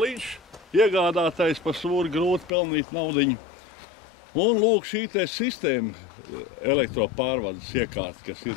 iegādātais par sūri grūti pelnīt naudiņu. Un lūk šī te sistēma elektropārvades iekārta, kas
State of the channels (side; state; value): right; drops out; at 2.5 s